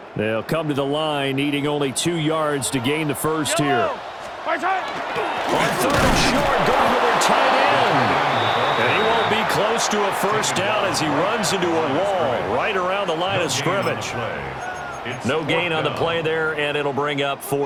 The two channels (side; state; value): both; identical; correlation 1.00